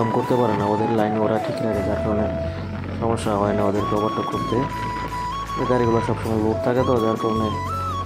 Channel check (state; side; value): identical; both; correlation 1.00